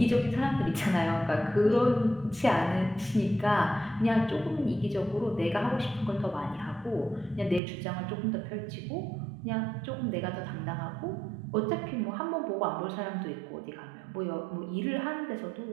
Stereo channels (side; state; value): left; drops out; at 7.6 s